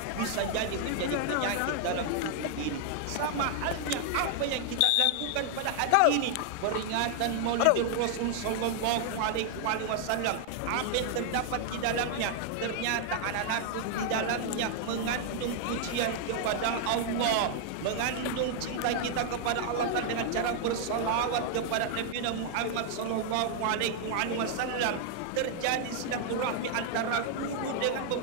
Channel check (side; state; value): both; different; correlation 0.00